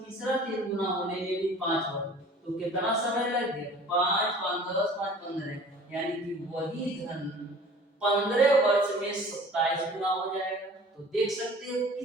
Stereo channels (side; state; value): both; normal; correlation 0.46